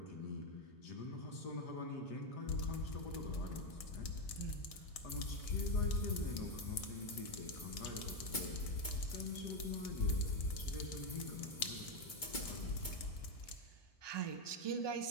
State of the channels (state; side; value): late; right; 1.7 ms